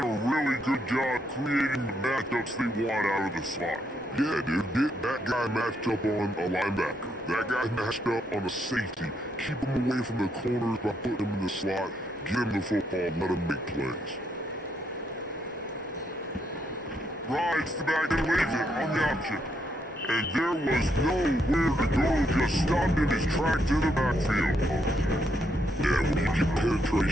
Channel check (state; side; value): normal; both; correlation 0.76